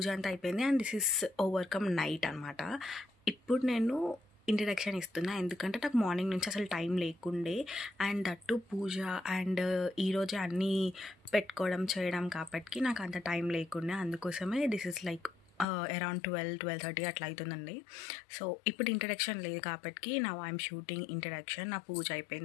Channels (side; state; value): right; drops out; at 15.7 s